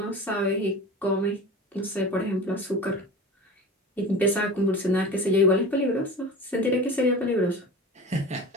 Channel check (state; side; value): normal; both; correlation 0.34